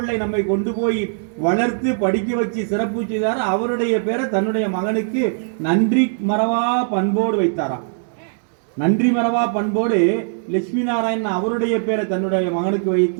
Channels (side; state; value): left; silent; digital silence